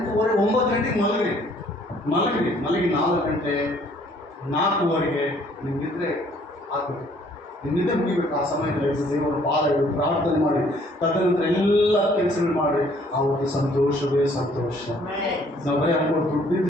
9 ಗಂಟೆಗೆ ಮಲಗಿ 4 ಗಂಟೆ 4:15 ನಿಮ್ಗಿದ್ರೆ ಆಗಬೇಕು. ನಿಮ್ಮಿಂದ ಮುಗಿಬೇಕು. ಆ ಸಮಯದಲ್ಲಿ ದೇವರ ಪಾದ ಇಡು, ಪ್ರಾರ್ಥನೆ ಮಾಡಿ, ತದನಂತರ ಎಲ್ಲ ಕೆಲಸಗಳು ಮಾಡಿ, ಅವ್ರಿಗೆ ಸಂತೋಷವೇ ಸಂತೋಷ. ನಾವು ಬರೀ ಅನ್ಕೊಂಡು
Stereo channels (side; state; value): both; normal; correlation 0.61